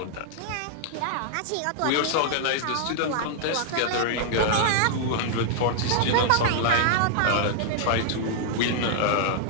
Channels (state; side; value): different; both; correlation 0.00